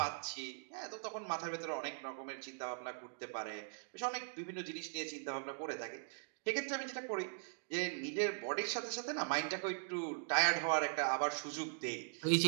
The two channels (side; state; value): left; silent; digital silence